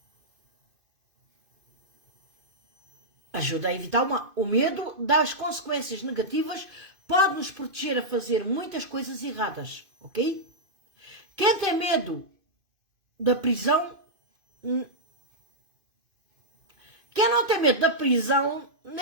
ajuda a evitar o medo das consequências negativas, pode nos proteger a fazer muitas coisas erradas, ok? Quem tem medo da prisão, quem não tem medo da prisão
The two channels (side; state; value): left; late; 2.5 ms